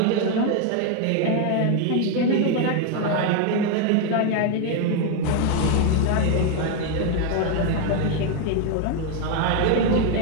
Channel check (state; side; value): different; both; correlation 0.01